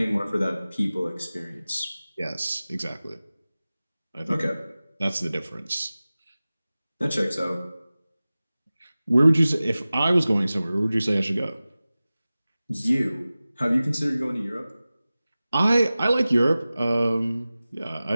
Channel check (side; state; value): both; inverted; correlation -0.97